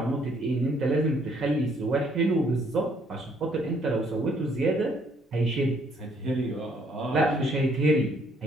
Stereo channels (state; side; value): normal; both; correlation 0.66